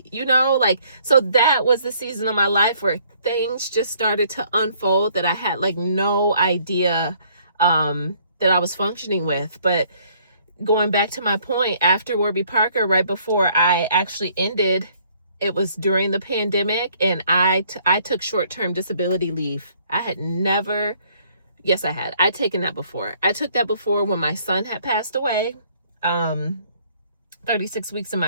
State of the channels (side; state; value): both; inverted; correlation -0.62